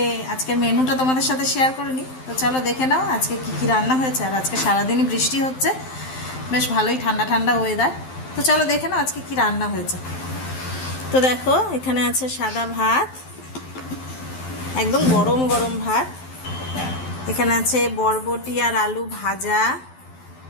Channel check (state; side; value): late; right; 12 ms